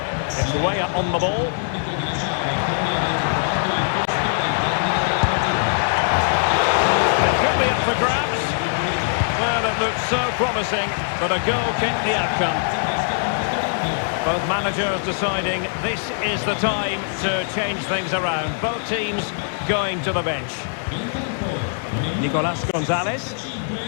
It's way up on the ball. It could be up for grabs. Well, it looked so promising, but a goal kicked the outcome. Both managers deciding this is the time to change things around. Both teams going to the bench. Nicolas Gonzalez.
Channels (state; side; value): silent; right; digital silence